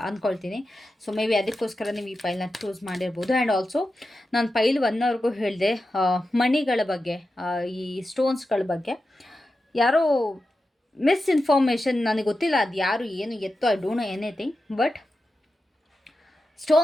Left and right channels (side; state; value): both; normal; correlation 0.91